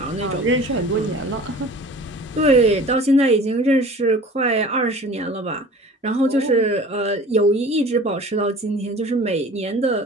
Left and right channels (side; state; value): both; normal; correlation 0.43